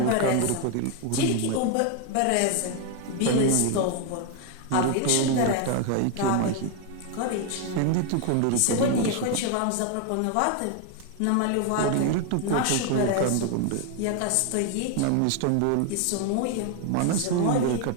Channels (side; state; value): both; different; correlation 0.01